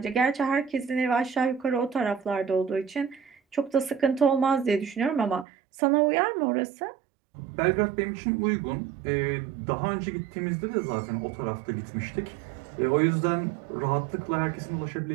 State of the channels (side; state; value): left; drops out; at 5.5 s